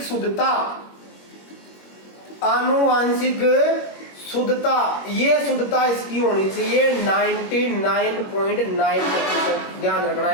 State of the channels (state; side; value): late; right; 21 ms